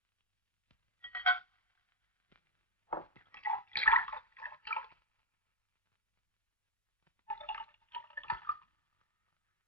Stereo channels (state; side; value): normal; both; correlation 0.05